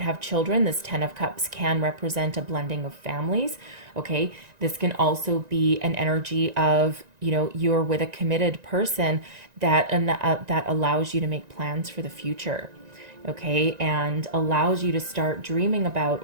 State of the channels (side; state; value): left; late; 1.9 ms